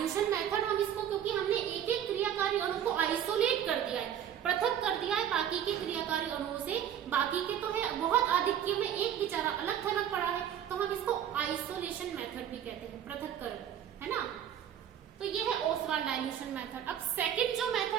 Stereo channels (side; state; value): left; quieter; 9.8 dB